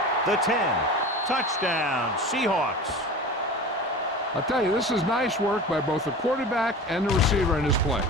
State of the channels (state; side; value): normal; both; correlation 0.34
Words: The 10, touchdown, Seahawks. I'll tell you, this is nice work by both the quarterback and the receiver in his play.